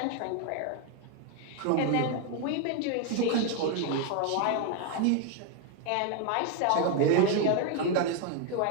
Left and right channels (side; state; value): both; different; correlation 0.01